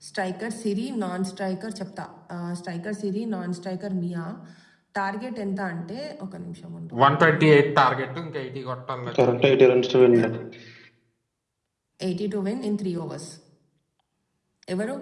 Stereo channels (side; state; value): both; identical; correlation 1.00